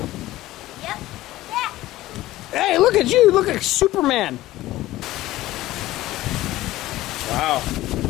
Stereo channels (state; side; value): quieter; right; 16.3 dB